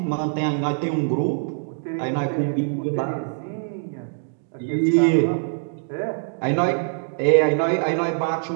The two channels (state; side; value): silent; left; digital silence